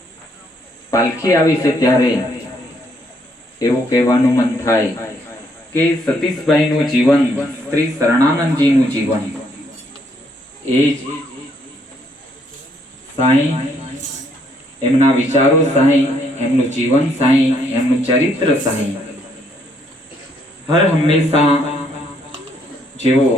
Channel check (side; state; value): both; normal; correlation 0.70